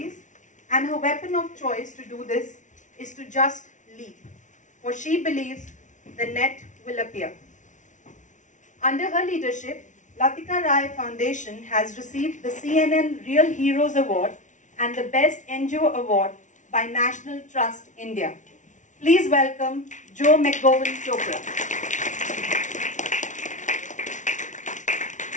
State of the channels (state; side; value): late; right; 0.37 ms